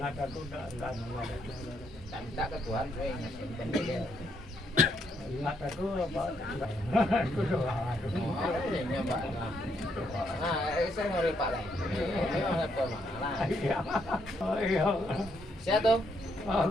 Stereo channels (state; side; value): normal; both; correlation 0.74